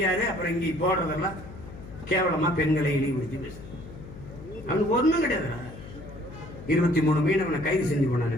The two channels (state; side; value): noise; left; hum, 14 dB below the sound